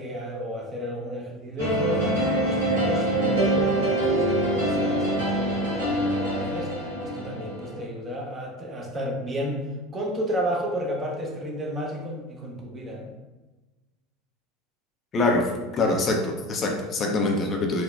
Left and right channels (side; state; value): both; normal; correlation 0.28